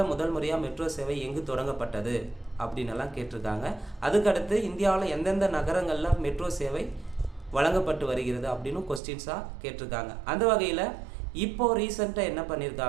முதல் முறையாக மெட்ரோ சேவை எங்கு தொடங்கப்பட்டது அப்படின்னெல்லாம் கேட்டிருக்காங்க. அதுக்கடுத்து இந்தியாவில் எந்தெந்த நகரங்களில் மெட்ரோ சேவை வழங்கப்பட்டு வருகிறது அப்படின்னு கொஸ்டின்ஸாக கேட்டிருக்காங்க. அந்த வகையில் இப்போது ரீசெண்டாக என்ன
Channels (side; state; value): left; drops out; at 9.0 s